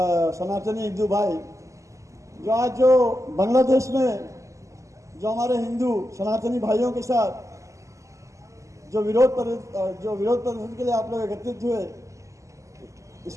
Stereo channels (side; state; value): left; late; 0.15 ms